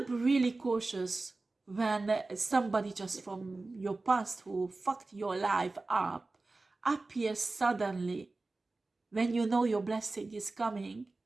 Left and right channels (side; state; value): left; quieter; 3.4 dB